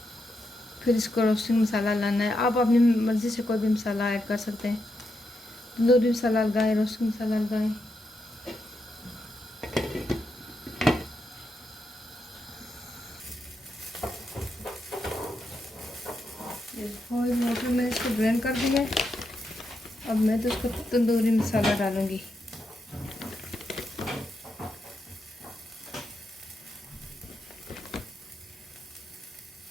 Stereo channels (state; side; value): normal; both; correlation 0.83